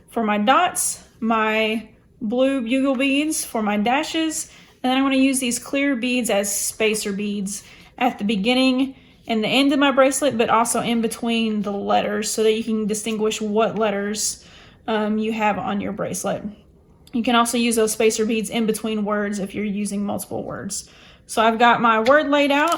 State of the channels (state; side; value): identical; both; correlation 1.00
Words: for my dots, my blue bugle beads for my dashes, and then I'm going to use these clear beads as spacer beads at the beginning and the end of my bracelet, but also in between the letters so that you can distinguish what letters you have on your bracelet. You can also use those spacer beads in between words if you're using multiple words. So I've got my word laid